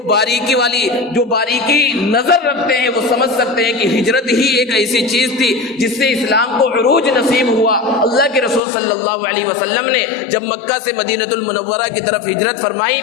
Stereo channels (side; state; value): right; drops out; at 8.6 s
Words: باریکی نظر رکھتے ہیں وہ سمجھ سکتے ہیں کہ ہجرت ہی ایک ایسی چیز تھی جس سے اسلام کو عروج نصیب ہوا۔ اللہ کے رسول صلی اللہ علیہ وسلم نے جب مکہ سے مدینہ المنورہ کی طرف ہجرت فرمائی